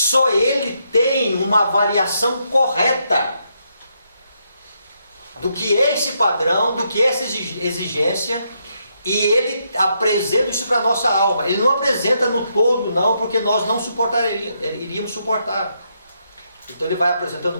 Ele tem uma avaliação correta do que é esse padrão, do que é essa exigência, e Ele apresenta isso para a nossa alma. Ele não apresenta no todo, não, porque nós não iríamos suportar. Então Ele vai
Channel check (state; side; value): inverted; both; correlation -0.78